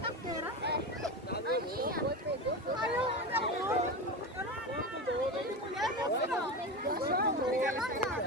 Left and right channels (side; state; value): both; normal; correlation 0.23